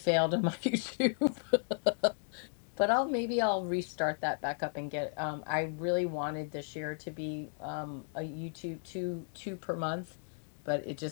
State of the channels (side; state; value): right; silent; 55 dB below the other